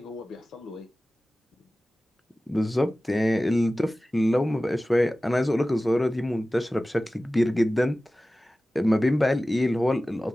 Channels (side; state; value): both; normal; correlation 0.96